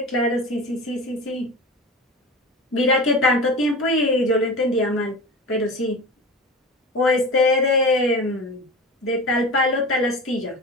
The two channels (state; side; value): normal; both; correlation 0.32